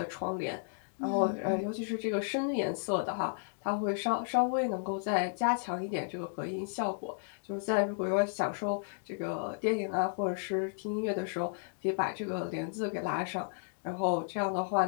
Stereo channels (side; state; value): right; silent; digital silence